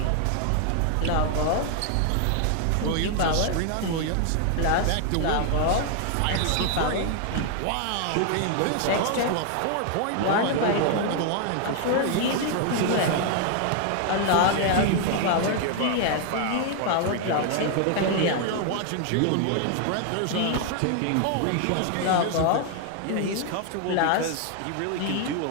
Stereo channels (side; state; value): both; different; correlation 0.00